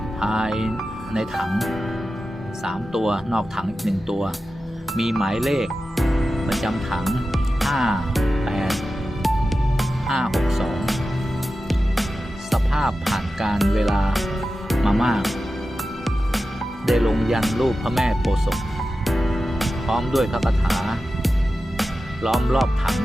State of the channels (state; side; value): normal; both; correlation 0.93